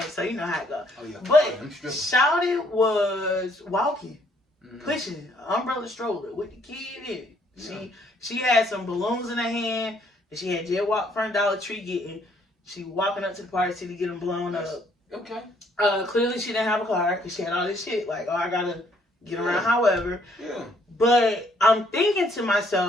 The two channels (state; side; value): normal; both; correlation 0.66